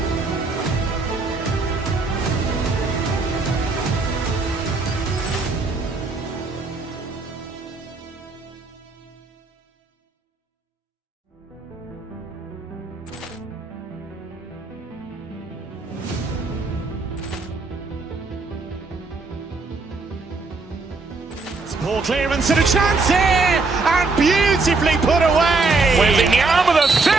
Ball clearance and a chance here, and beautifully put away. Waving the arm of the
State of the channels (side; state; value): left; quieter; 3.9 dB